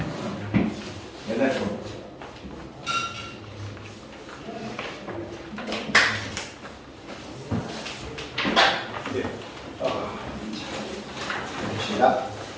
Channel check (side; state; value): both; identical; correlation 1.00